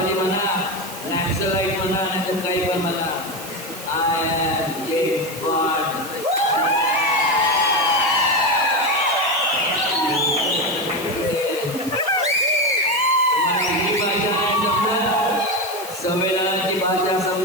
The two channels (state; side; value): noise; right; hiss, 13 dB below the sound